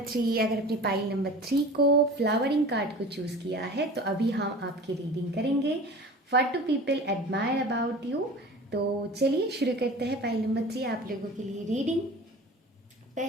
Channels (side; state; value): both; normal; correlation 0.38